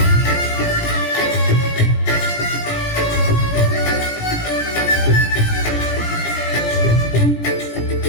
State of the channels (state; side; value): late; right; 17 ms